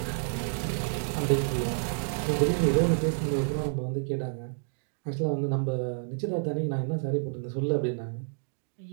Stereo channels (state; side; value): silent; left; digital silence